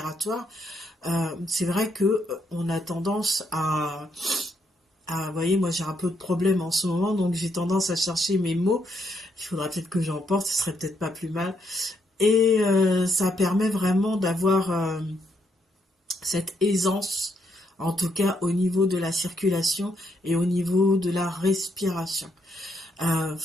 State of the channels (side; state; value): both; normal; correlation 0.76